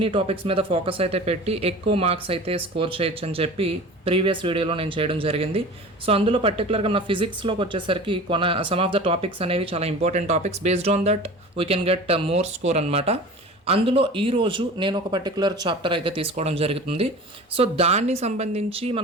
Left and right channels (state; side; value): normal; both; correlation 0.38